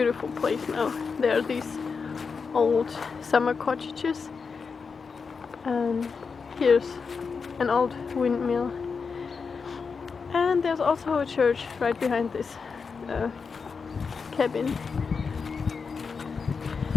place now. There are these old summer cottages, and here's an old windmill, and there's also a church right behind this cabin.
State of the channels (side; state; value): right; quieter; 5.3 dB